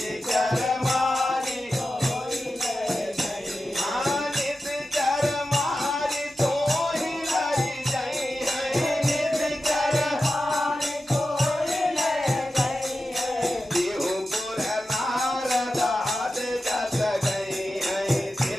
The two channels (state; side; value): normal; both; correlation 0.92